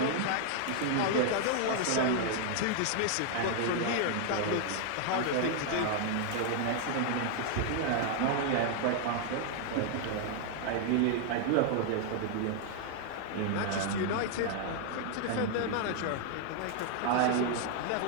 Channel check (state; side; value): different; both; correlation 0.00